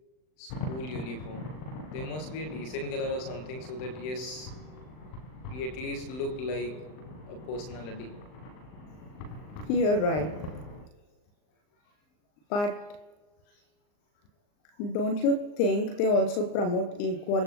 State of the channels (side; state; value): right; late; 39 ms